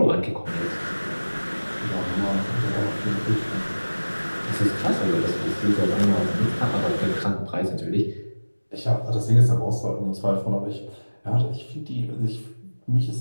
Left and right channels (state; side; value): inverted; both; correlation -1.00